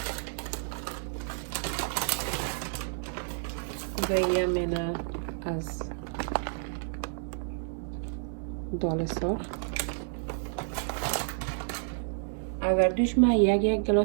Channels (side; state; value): left; silent; 58 dB below the other